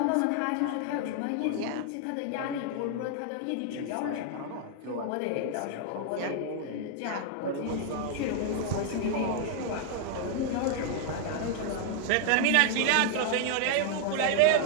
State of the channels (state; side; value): different; both; correlation 0.00